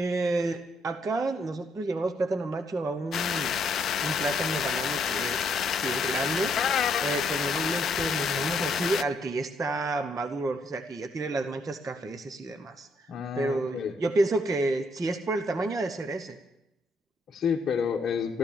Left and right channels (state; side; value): normal; both; correlation 0.72